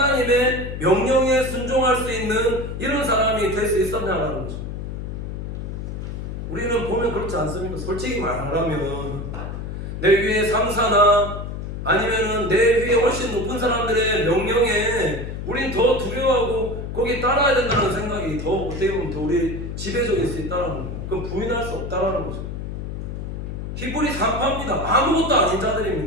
명령에 순종할 수 있는 이런 사람이 될 수 있었냐는 거죠. 우리는 보면 그렇지 않습니까? 솔직히 말하면 내 위에 상사나 아니면은 내 위에 훨씬 높은 사람들의 명령에 우린 더 두려워하고 거기 따라야 된다는 생각이 더 어떻게 보면 더 우리 지배적일 수 있다는 거예요. 그럼 부인할 수 없다는 거죠. 히브리 산파입니다. 아무것도 아닌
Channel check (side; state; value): left; noise; hum, 6 dB below the sound